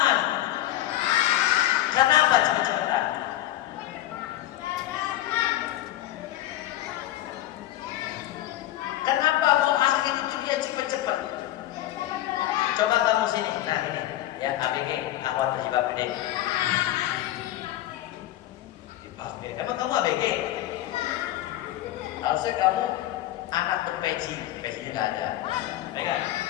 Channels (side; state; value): right; quieter; 14.2 dB